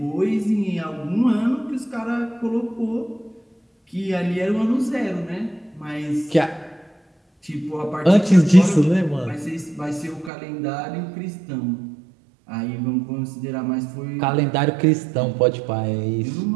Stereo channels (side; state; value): left; drops out; at 10.3 s